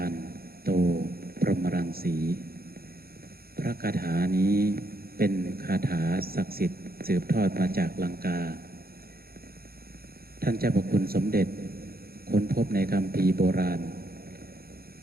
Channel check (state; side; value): late; left; 0.44 ms